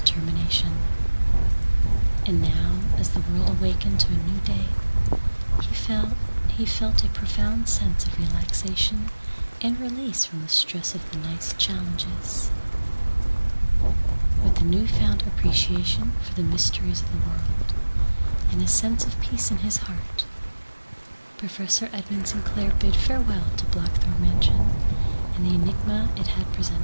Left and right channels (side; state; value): both; inverted; correlation -1.00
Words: And now, as the world awakened to a new day, he felt a profound sense of relaxation and release from the stress of the night's challenges. With a newfound appreciation for the mysteries of the world and a sense of peace in his heart, Professor Edmund Sinclair bid farewell to Blackthorn Mansion and the enigma it had